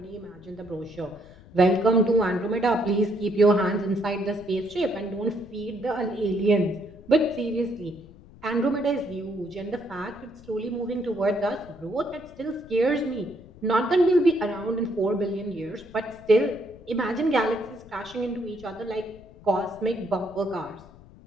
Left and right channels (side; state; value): left; noise; rumble, 21 dB below the sound